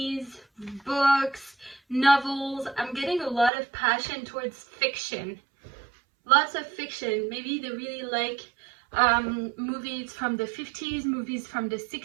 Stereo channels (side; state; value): left; drops out; at 3.5 s